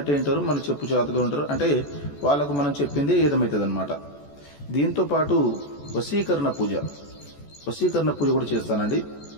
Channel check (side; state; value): right; late; 14 ms